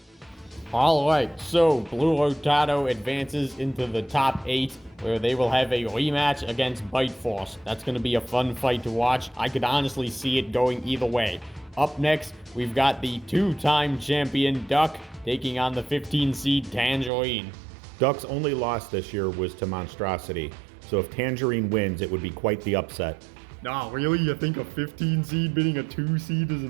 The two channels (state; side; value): drops out; left; at 17.1 s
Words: Alright, so Blue Rotato advances into the top 8, where they will have a rematch against Bite Force. That's going to be a fun fight to watch. I could honestly see it going either way. Up next, we've got the 2-time champion Duck taking on the 15 seed Tangerine. Duck's only loss this year was to Monstrosity, so if Tangerine wins, it would be quite the upset. Nah, really? You think a 15 seed beating a 2 seed is